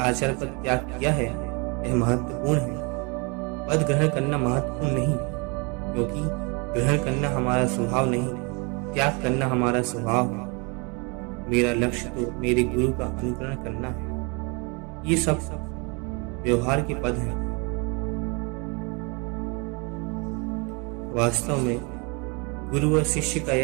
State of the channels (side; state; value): left; quieter; 31.4 dB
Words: पद त्याग किया है, यह महत्वपूर्ण है। पद ग्रहण करना महत्वपूर्ण नहीं, क्योंकि ग्रहण करना हमारा स्वभाव नहीं, त्याग करना हमारा स्वभाव है। मेरा लक्ष्य तो मेरे गुरु का अनुकरण करना है। ये सब व्यवहार के पद हैं। वास्तव में गुरु और शिष्य का